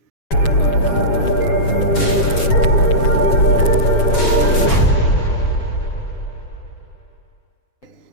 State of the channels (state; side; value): late; right; 7.1 ms